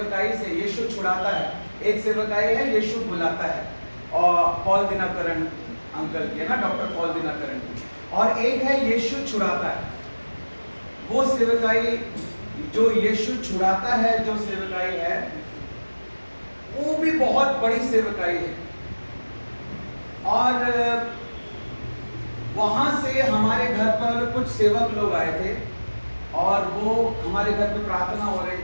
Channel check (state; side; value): inverted; both; correlation -1.00